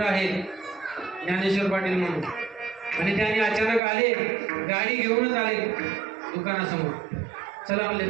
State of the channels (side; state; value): left; drops out; at 3.8 s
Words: आहेत ज्ञानेश्वर पाटील म्हणून, आणि त्याने अचानक आले, गाडी घेऊनच आले दुकानासमोर. चला म्हणले